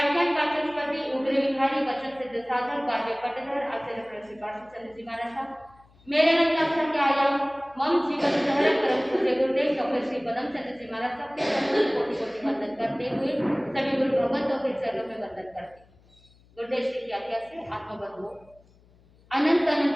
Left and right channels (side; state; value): left; noise; hum, 29 dB below the sound